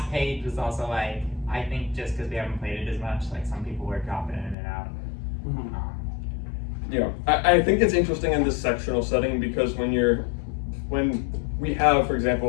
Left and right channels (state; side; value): drops out; right; at 4.5 s